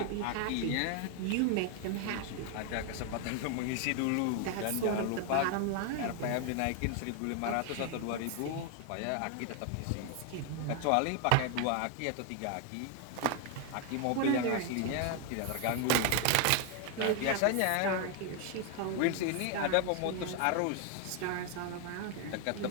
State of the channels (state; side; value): different; both; correlation 0.00